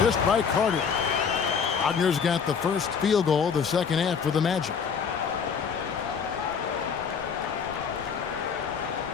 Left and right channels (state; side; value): quieter; right; 6.5 dB